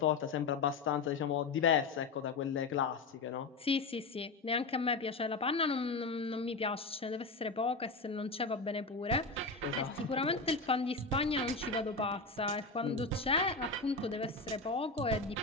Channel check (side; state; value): right; quieter; 3.9 dB